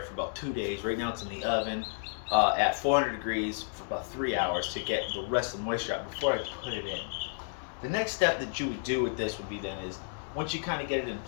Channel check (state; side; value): silent; right; digital silence